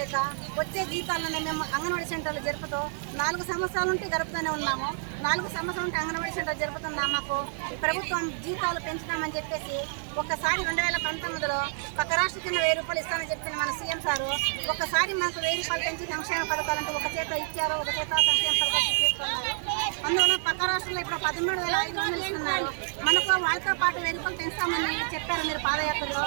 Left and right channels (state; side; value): silent; left; 59 dB below the other